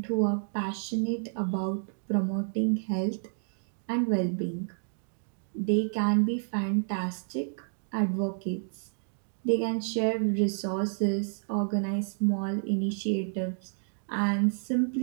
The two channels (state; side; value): silent; left; digital silence